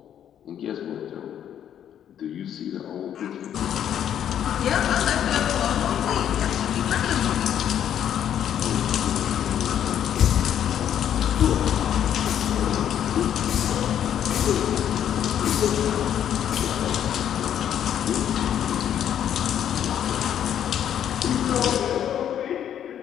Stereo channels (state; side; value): quieter; right; 9.9 dB